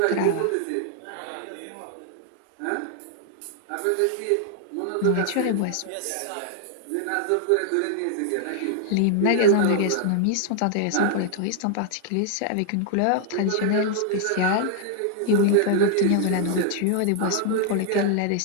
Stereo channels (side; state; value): both; different; correlation 0.00